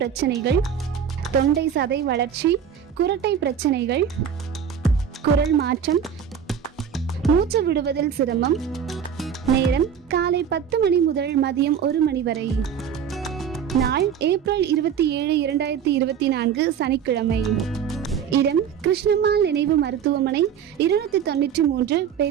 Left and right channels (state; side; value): quieter; left; 8.0 dB